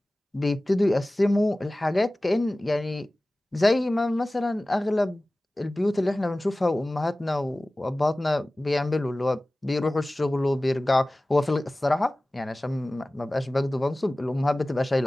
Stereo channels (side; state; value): both; normal; correlation 0.97